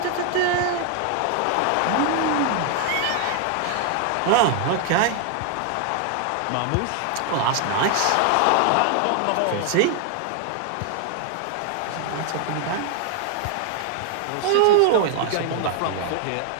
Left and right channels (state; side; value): different; both; correlation 0.00